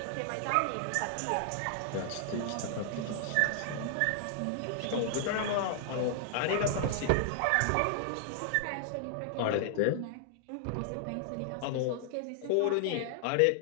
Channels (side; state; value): both; different; correlation -0.01